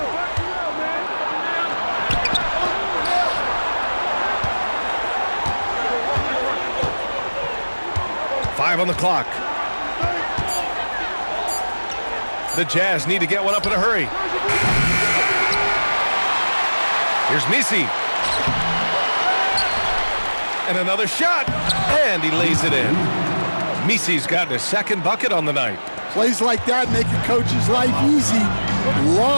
On the clock. The Jazz need to get one up in a hurry. Here's Misi. And another shot. And he lays it in. Misi's gotten his second bucket on the night. Plays like that make a coach's life easy.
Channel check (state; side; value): inverted; both; correlation -1.00